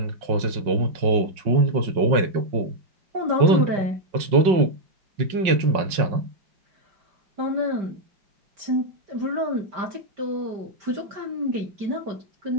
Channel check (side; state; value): left; late; 5.4 ms